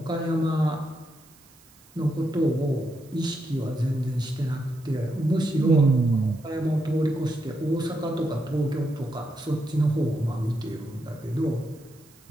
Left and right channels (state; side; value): noise; right; hiss, 27 dB below the sound